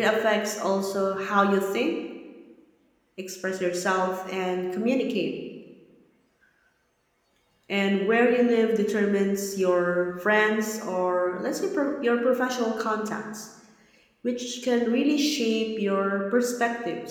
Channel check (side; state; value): both; identical; correlation 1.00